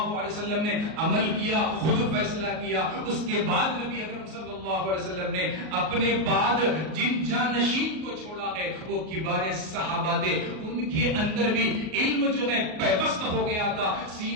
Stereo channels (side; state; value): left; late; 38 ms